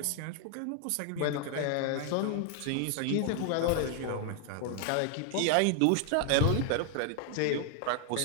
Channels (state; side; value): different; both; correlation 0.00